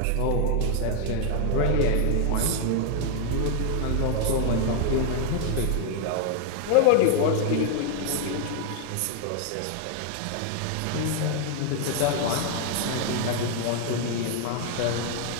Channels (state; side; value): different; both; correlation 0.00